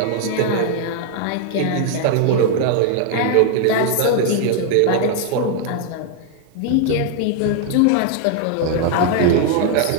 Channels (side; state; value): both; different; correlation 0.00